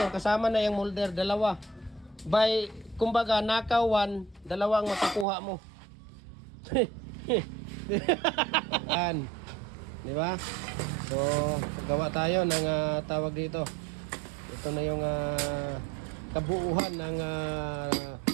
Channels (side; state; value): left; drops out; at 5.2 s